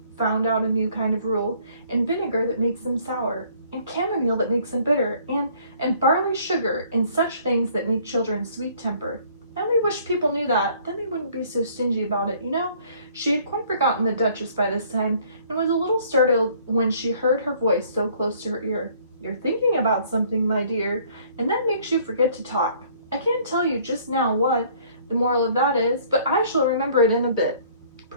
found out a new kind of rule, and vinegar that makes them sour, and chamomile that makes them bitter, and barley sugar, and such things that make children sweet-tempered. I only wish people knew that, then they wouldn't be so stingy about it, you know? She had quite forgotten the Duchess by this time, and was a little startled when she heard her voice so close to her ear. "You're thinking about something, my dear, and that makes you forget to talk. I can't tell you just now what the moral of that is, but I shall remember it in a bit."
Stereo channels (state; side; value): inverted; both; correlation -0.58